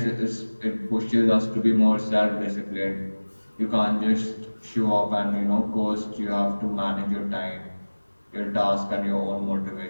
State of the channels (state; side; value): inverted; both; correlation -1.00